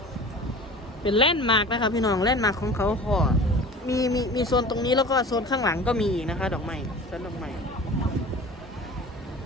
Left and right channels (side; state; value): both; normal; correlation 0.40